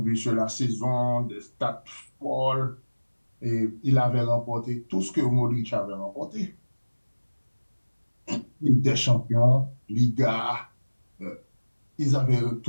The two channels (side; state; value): both; inverted; correlation -1.00